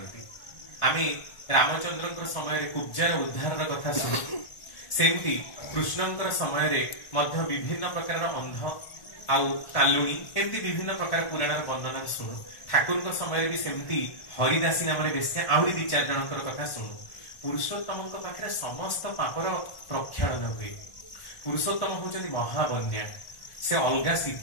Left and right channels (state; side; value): late; right; 1.4 ms